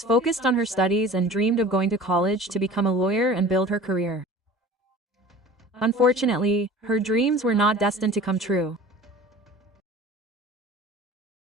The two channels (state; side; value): normal; both; correlation 0.42